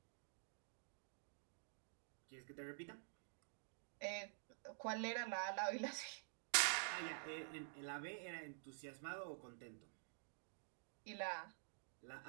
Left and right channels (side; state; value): left; silent; digital silence